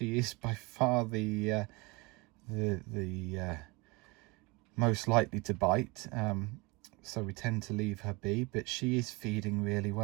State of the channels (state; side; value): quieter; left; 25.3 dB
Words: is by far the most likely to bite, so we tend to leave her be, but she is feeding really